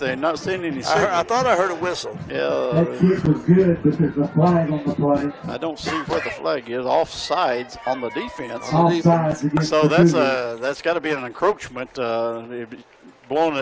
Not seeing any signal. I thought I heard a whistle. Yeah. That kick was good, but there's a flag on the play. I don't see where the flag is. Offsides on the defense. Offsides against So the Cougars. that's got to be an encroachment. Blowing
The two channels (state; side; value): identical; both; correlation 1.00